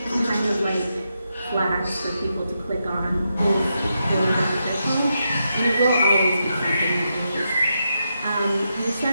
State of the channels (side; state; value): both; inverted; correlation -0.85